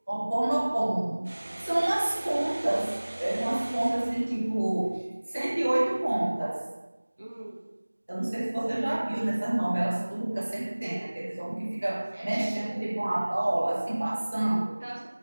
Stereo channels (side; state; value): both; inverted; correlation -1.00